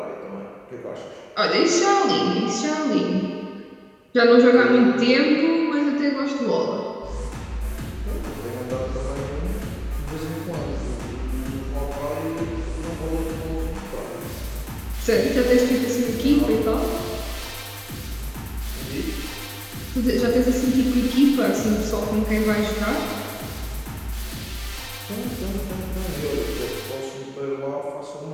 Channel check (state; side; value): identical; both; correlation 1.00